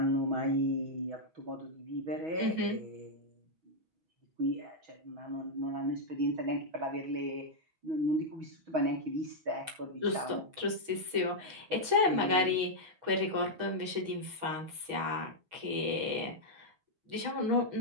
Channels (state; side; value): late; left; 6.2 ms